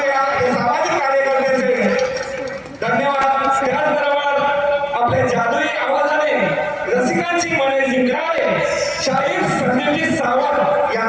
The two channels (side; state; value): both; identical; correlation 1.00